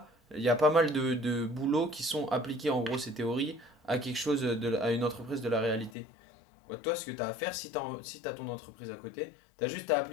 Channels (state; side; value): drops out; right; at 6.0 s